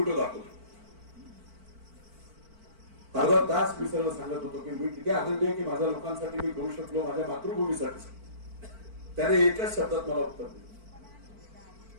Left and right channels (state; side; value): late; left; 4.5 ms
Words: दाखवले. अर्धा तास मी सगळं सांगत होतो की मी किती आनंदी आहे की माझ्या लोकांसाठी मी करू शकलो, माझ्या मातृभूमीसाठी. त्याने एकच शब्दात मला उत्तर दिलं,